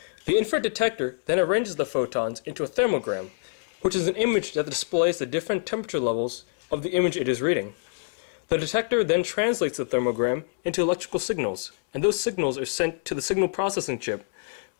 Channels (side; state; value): right; silent; digital silence